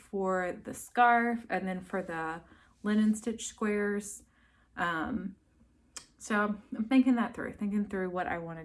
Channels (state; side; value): identical; both; correlation 1.00